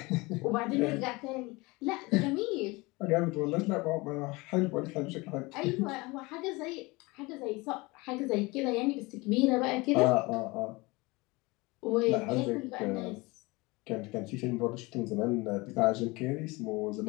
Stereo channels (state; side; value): quieter; right; 23.9 dB